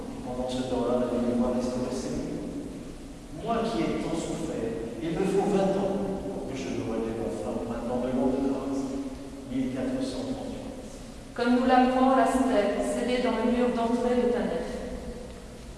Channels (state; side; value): identical; both; correlation 1.00